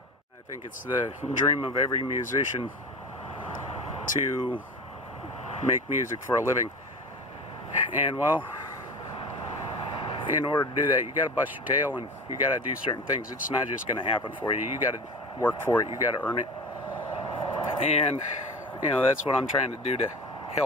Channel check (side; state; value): both; normal; correlation 0.31